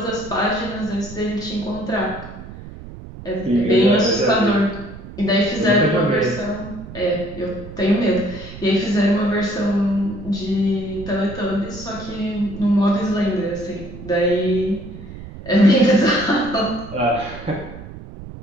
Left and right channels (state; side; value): noise; right; rumble, 14 dB below the sound